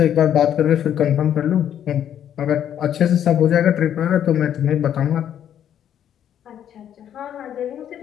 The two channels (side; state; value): right; quieter; 9.9 dB